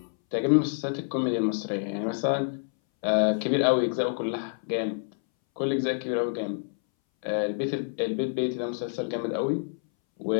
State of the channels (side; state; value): right; silent; 60 dB below the other